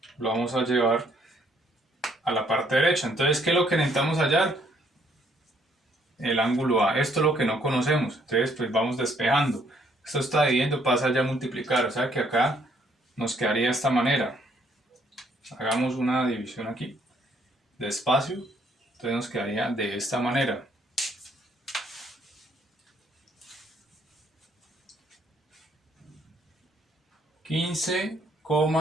lo vamos a llevar a la parte derecha. Entonces, ¿qué es lo que necesitamos hallar? El ángulo A. Esto es lo que no conocemos. Entonces, pues vamos despejando. Esto está dividiendo, pasa ya a multiplicar. O sea que acá nos quedaría de esta manera. Hagamos una división aquí de espacio. Entonces nos quedaría de esta manera.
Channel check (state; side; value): normal; both; correlation 0.67